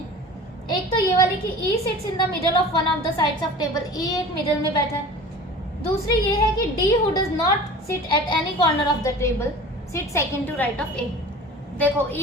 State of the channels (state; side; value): normal; both; correlation 0.40